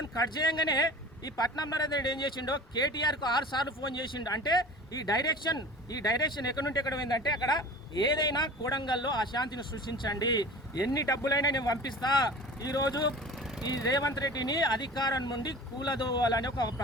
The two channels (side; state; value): both; normal; correlation 0.39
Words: కట్ చేయంగానే ఈ పట్నం నరేందర్ రెడ్డి ఏం చేసిండో కేటీఆర్కు 6 సార్లు ఫోన్ చేసిండు. అంటే ఈ డైరెక్షన్ ఎక్కడి నుండి ఎక్కడ పోయిందంటే, అక్కడ ఏదైనా కోడంగల్లో అశాంతిని సృష్టించండి, ఎన్ని డబ్బులైనా నేను పంపిస్తా, ఈరోజు ఈ రేవంత్ రెడ్డిని అధికారం నుండి కూలదోవాలని ఒక